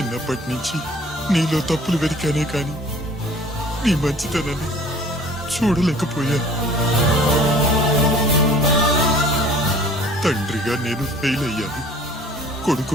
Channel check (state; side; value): normal; both; correlation 0.49